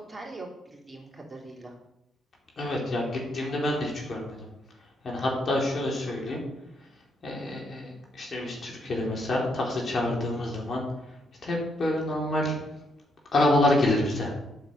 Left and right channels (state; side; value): normal; both; correlation 0.75